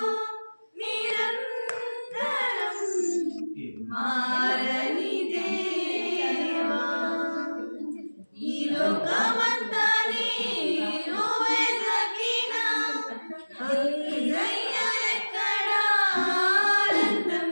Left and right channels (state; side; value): inverted; both; correlation -1.00